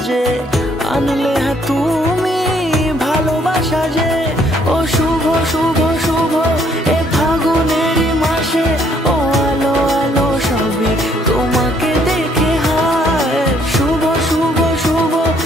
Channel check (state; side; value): normal; both; correlation 0.66